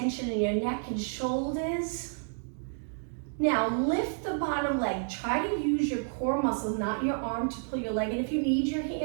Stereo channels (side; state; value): left; silent; 58 dB below the other